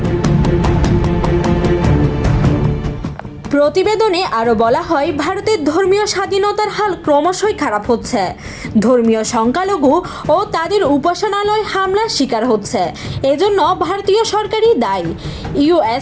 প্রতিবেদনে আরও বলা হয়, ভারতের ধর্মীয় স্বাধীনতার হাল ক্রমশই খারাপ হচ্ছে। ধর্মীয় সংখ্যালঘু ও তাদের উপাসনালয় হামলার শিকার হচ্ছে। এজন্য ভারতীয় সরকারই দায়ী।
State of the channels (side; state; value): both; identical; correlation 1.00